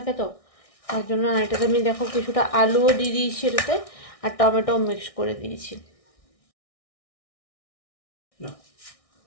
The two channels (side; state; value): right; late; 1.6 ms